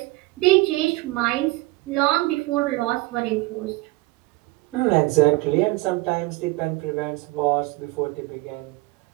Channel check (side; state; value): left; quieter; 21.6 dB